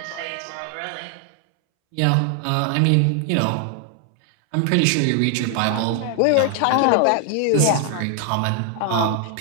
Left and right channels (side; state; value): both; different; correlation 0.00